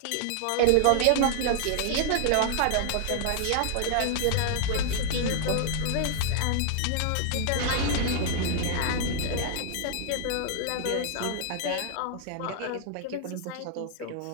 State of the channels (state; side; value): different; both; correlation -0.01